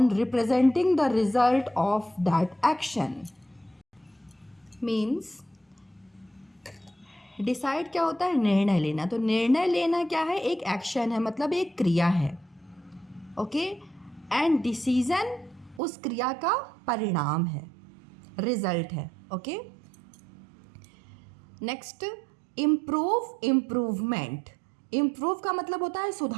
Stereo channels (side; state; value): left; drops out; at 15.8 s